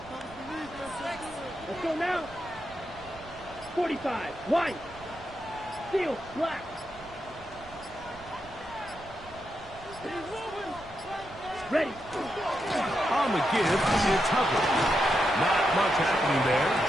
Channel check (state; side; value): noise; right; rumble, 19 dB below the sound